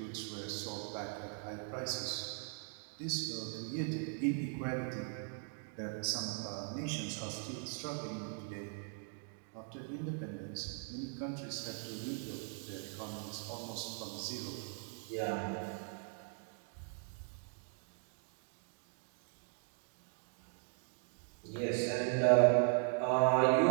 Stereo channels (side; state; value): left; silent; 52 dB below the other